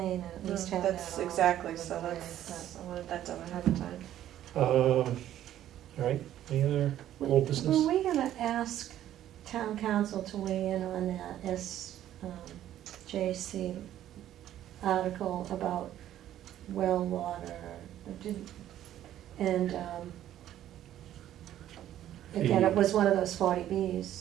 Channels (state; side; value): quieter; left; 12.1 dB